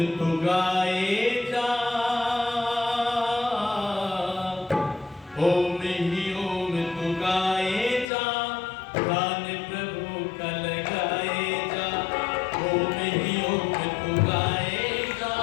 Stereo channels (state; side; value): drops out; right; at 8.1 s